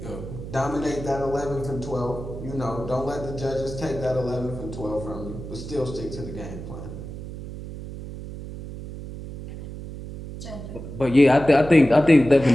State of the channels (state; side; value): noise; right; hum, 10 dB below the sound